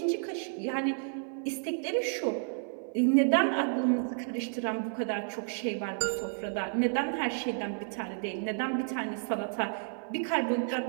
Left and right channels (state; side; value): silent; left; 57 dB below the other